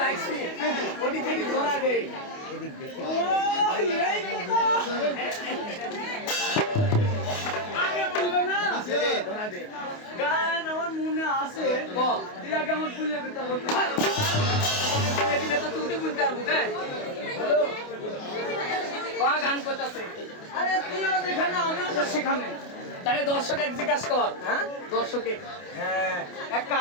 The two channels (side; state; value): right; late; 28 ms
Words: ওটি থেকে ধরা দেই ও, এই কথা। আগে বলবে না ধরা দে গান আমার মনে আছে ক তুই আগে আমার ভুলে দিতে হবে দিলে তো তুই বুঝতে পারবো হ্যালো গান করতেছে আরে তুইও যেখানে আমিও তো সেখানে তাহলে দর্শক এক জিজ্ঞাসা কর হ্যাঁ দর্শকে হ্যাঁ এক